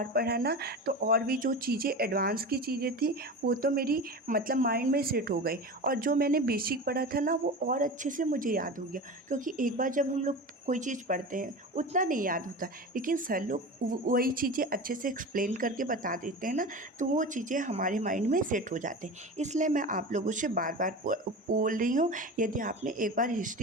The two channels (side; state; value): both; normal; correlation 0.30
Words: पढ़ा ना तो और भी जो चीज़ें एडवांस की चीज़ें थी वो तो मेरी मतलब माइंड में सेट हो गई, और जो मैंने बेसिक पढ़ा था ना वो और अच्छे से मुझे याद हो गया। क्योंकि एक बार जब हम लोग कोई चीज़ पढ़ते हैं उतना नहीं याद होता, लेकिन सर लोग वही चीज़ें अच्छे से एक्सप्लेन करके बता देते हैं ना, तो वो चीज़ें हमारे माइंड में सेट हो जाते हैं। इसलिए मैं आप लोगों से बार बार बोल रही हूँ, यदि आपने एक बार